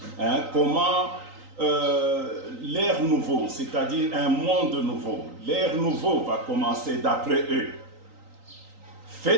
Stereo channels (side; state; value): left; late; 3.9 ms